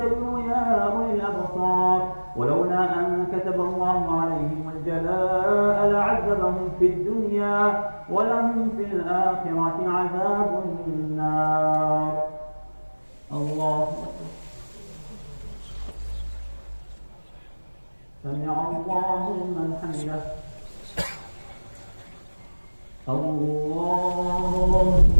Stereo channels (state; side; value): inverted; both; correlation -1.00